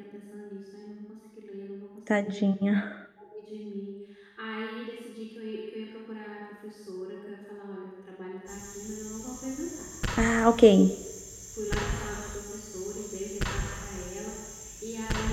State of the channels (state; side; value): identical; both; correlation 1.00